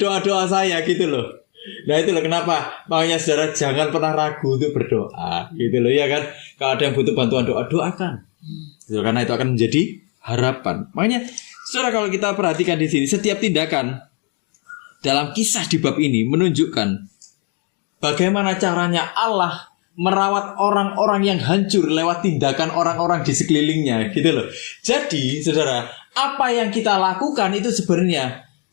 doa-doa saya, gitu loh. Nah itu loh kenapa makanya saudara jangan pernah ragu untuk berdoa, gitu loh ya kan. Kalau ada yang butuh bantuan doa, doakan, gitu, karena itu akan menjadi harapan. Makanya saudara kalau kita perhatikan di sini, setiap tindakan dalam kisah di bab ini menunjukkan bagaimana caranya Allah merawat orang-orang yang hancur lewat tindakan orang-orang di sekelilingnya, gitu loh. Jadi saudara, apa yang kita lakukan itu sebenarnya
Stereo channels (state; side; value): quieter; right; 36.4 dB